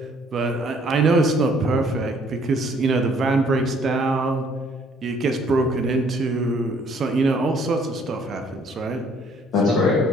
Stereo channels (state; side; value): normal; both; correlation 0.62